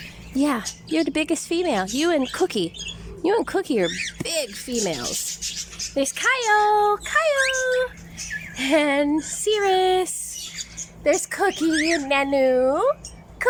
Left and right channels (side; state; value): both; identical; correlation 1.00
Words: Yeah, you're the biggest female. You and Cookie. You and Cookie are big females. There's Kyle. And Cirrus. There's Cookie and Nanu.